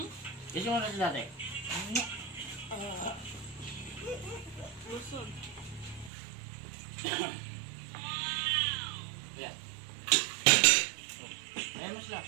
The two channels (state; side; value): drops out; left; at 6.1 s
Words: Gusto mo na sila dati? Lusog. Yan. Ayan mo sila.